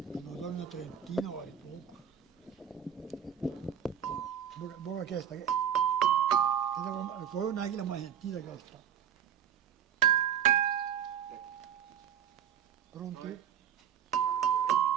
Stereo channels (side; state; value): left; quieter; 9.0 dB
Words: sono una trentina vale poco. Buona questa, poi non è che la mai sentita questa. Pronti?